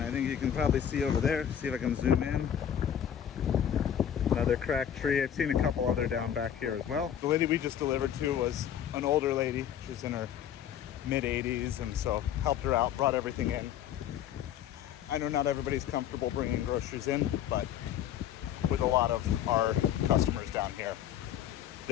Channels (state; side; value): quieter; right; 9.7 dB